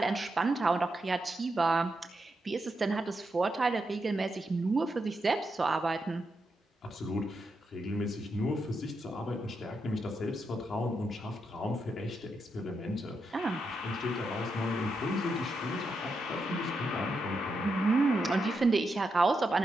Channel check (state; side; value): normal; both; correlation 0.84